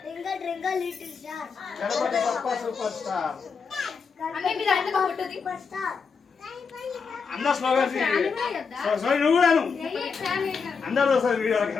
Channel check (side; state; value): right; quieter; 5.5 dB